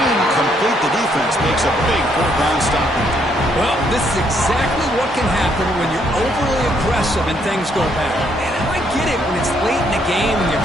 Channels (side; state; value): both; normal; correlation 0.71